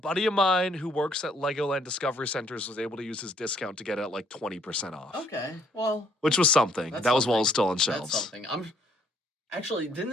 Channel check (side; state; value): both; normal; correlation 0.66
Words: of mine who works at Legoland Discovery Centers was able to use his discount to get it at like 20% off. Okay, well, Which was something. that's That was while it was something. still on That's shelves. something. Actually,